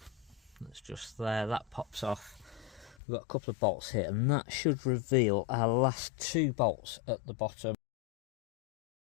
That's just there, that pops off. We've got a couple of bolts here and that should reveal our last two bolts at the bottom.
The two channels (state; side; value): drops out; right; at 3.0 s